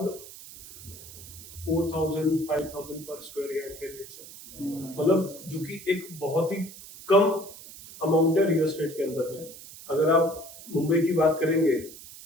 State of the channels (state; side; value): noise; right; hiss, 16 dB below the sound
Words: 4,000-5,000 पर स्क्वायर यार्ड के रेट्स है, मतलब जो कि एक बहुत ही कम अमाउंट है रियल एस्टेट के अंदर में। अगर आप मुंबई की बात करेंगे